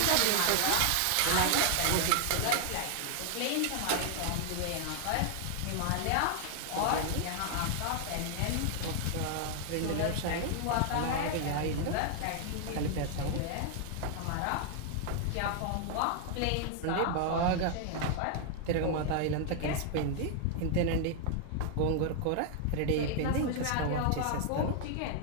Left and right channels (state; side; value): different; both; correlation 0.00